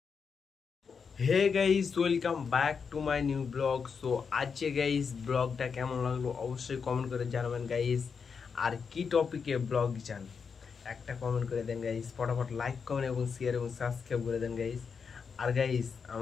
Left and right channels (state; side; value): quieter; right; 5.9 dB